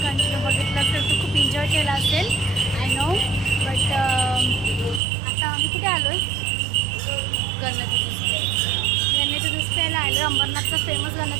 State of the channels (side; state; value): left; drops out; at 5.0 s